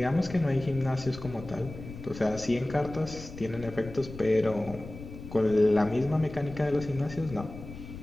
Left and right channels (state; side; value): noise; left; rumble, 13 dB below the sound